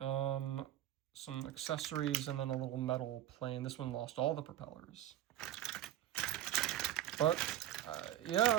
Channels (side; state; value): left; quieter; 12.9 dB